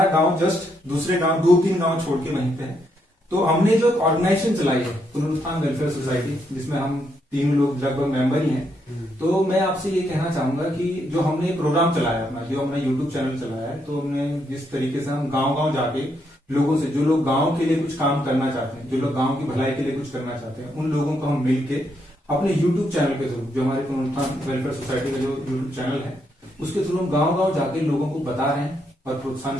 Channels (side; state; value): both; normal; correlation 0.77